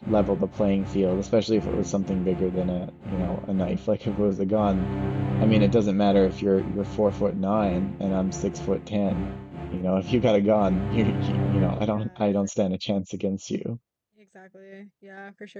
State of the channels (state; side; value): identical; both; correlation 1.00